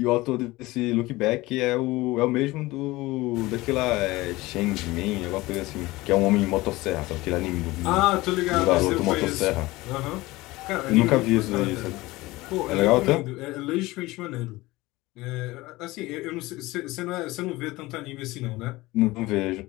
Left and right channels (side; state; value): right; quieter; 20.0 dB